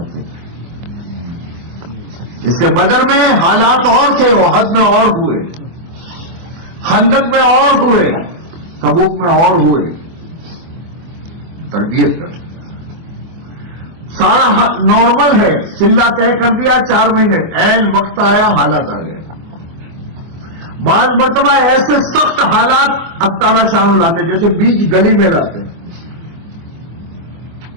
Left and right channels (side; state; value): left; late; 24 ms